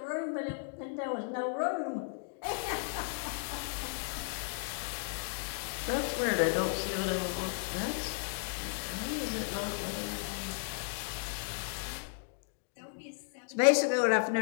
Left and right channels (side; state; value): right; silent; digital silence